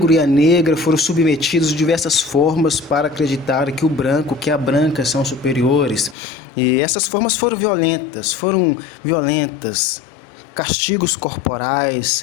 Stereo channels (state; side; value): drops out; right; at 6.2 s